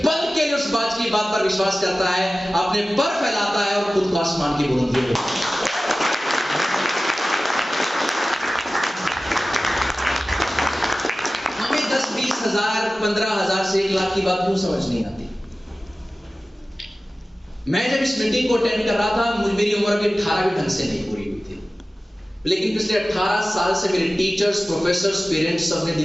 पल के लिए उस बाज की बात पर विश्वास करता है, अपने पर फैलाता है और खुद को आसमान की बुलंदियों में। हमें 10-20 हजार 15 हजार से 1 लाख की बात क्यों समझ नहीं आती? मैं जब इस मीटिंग को अटेंड कर रहा था, मेरी उम्र भी 18 भी ढंग से नहीं पूरी हुई थी, लेकिन पिछले 18 साल से मेरे टीचर्स, प्रोफेसर्स, पेरेंट्स सबने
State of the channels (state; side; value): normal; both; correlation 0.96